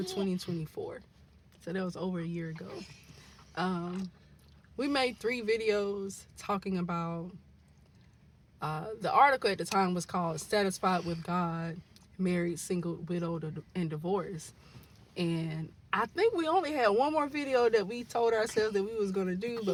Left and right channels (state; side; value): identical; both; correlation 1.00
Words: 2024. So that was over a year ago. We made 3 videos talking about the article at the time was called Satisfied with God, Married, Single, Widowed, and Divorced. And I think we only had one more video that we told ourselves that we was going to do,